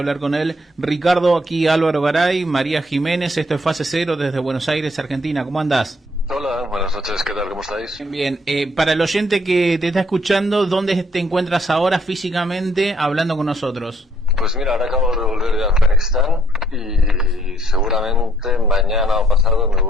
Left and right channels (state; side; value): normal; both; correlation 0.67